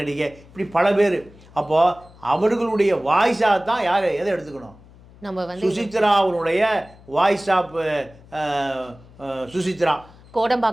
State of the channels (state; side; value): noise; left; hum, 24 dB below the sound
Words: இப்படி பல பேர். அப்போது அவர்களுடைய வாய்ஸாக தான் யார் எதை எடுத்துக்கணும்? நம்ம வந்து சுசித்ரா அவருடைய வாய்ஸ் ஆஃப் சுசித்ரா